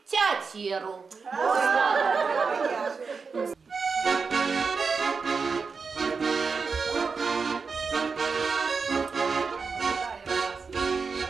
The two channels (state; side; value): quieter; left; 5.0 dB